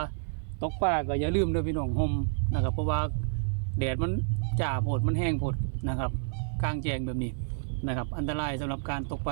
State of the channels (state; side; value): silent; left; 58 dB below the other